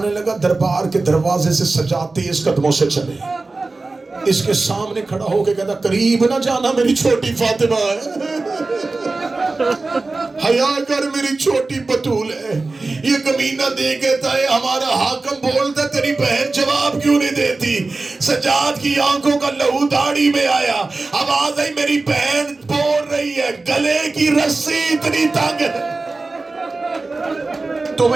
لگا دربار کے دروازے سے سجاد تیز قدموں سے چلے. اس کے سامنے کھڑا ہو کے کہتا قریب نہ جانا میری چھوٹی فاطمہ ہے، حیا کر میری چھوٹی بطول ہے. یہ کمینہ دے کہتا ہے ہمارا حاکم بولتا تیری بہن جواب کیوں نہیں دیتی؟ سجاد کی آنکھوں کا لہو داڑھی میں آیا. آواز آئی میری بہن بول رہی ہے گلے کی رسی اتنی تنگ ہے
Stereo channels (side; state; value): left; quieter; 3.5 dB